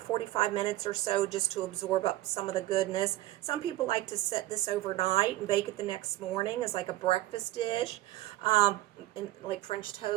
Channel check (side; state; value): left; quieter; 16.1 dB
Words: minutes or so, just to absorb up some of the goodness. Some people like to set this overnight and bake it the next morning as like a breakfast dish, like French